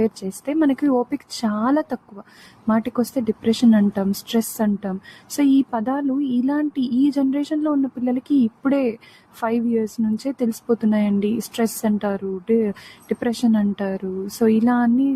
చేస్తే మనకి ఓపిక చాలా తక్కువ. మాటికి వస్తే డిప్రెషన్ అంటాం, స్ట్రెస్ అంటాం. సో ఈ పదాలు ఈ జనరేషన్లో ఉన్న పిల్లలకి ఇప్పుడే 5 years నుంచే తెలిసిపోతున్నాయండి. స్ట్రెస్ అంటారు, డిప్రెషన్ అంటారు. సో ఇలా అన్నీ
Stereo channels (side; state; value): both; identical; correlation 1.00